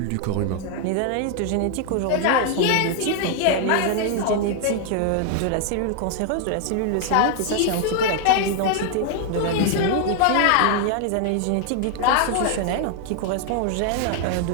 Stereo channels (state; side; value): different; both; correlation 0.00